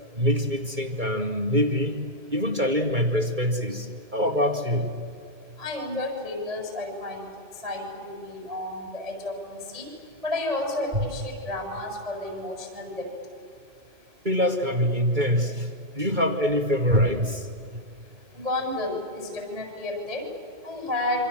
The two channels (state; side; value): late; left; 2.3 ms